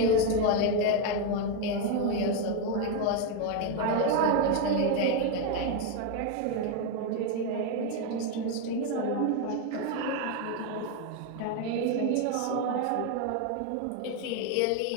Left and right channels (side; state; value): both; different; correlation 0.02